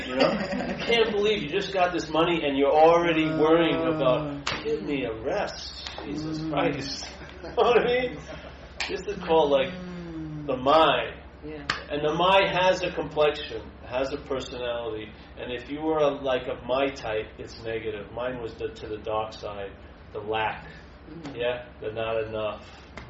I can't believe you just got this money and you're already worrying about, give me a rest. Jesus Christ. You know what I mean? This is called the mind. Yeah. And the mind has a complexion, has a personality. And if you were of my type, it's negative. Mine was to the dark side, the lack. Yeah, the not enough.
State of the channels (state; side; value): identical; both; correlation 1.00